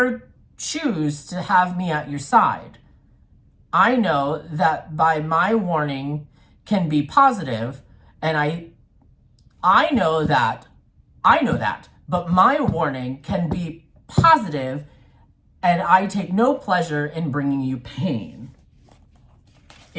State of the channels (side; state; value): both; identical; correlation 1.00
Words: choose to have me at your side. I know that by my warning can be positive, and I know that, but my warning can be positive, and I take no pleasure in bringing you pain.